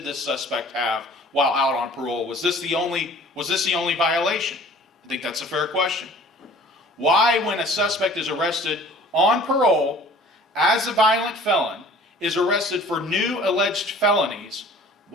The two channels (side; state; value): both; normal; correlation 0.49